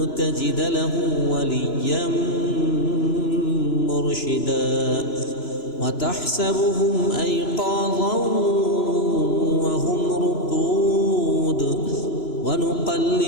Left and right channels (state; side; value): late; right; 2.9 ms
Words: تجد له وليا مرشدا وتحسبهم أيقاظا وهم رقود